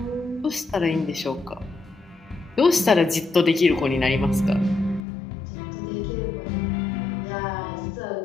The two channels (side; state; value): right; drops out; at 5.0 s